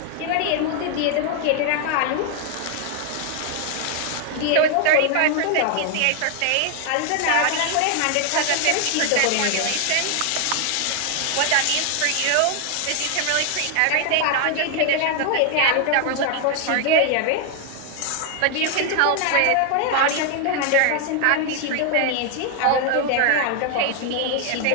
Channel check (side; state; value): both; different; correlation 0.00